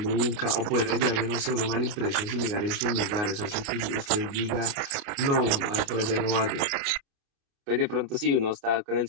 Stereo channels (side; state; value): left; late; 29 ms